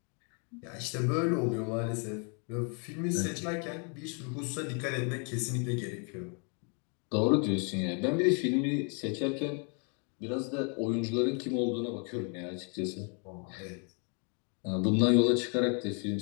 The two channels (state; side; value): quieter; right; 38.3 dB